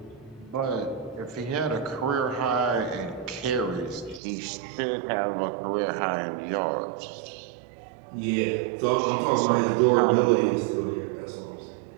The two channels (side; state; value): left; drops out; at 4.2 s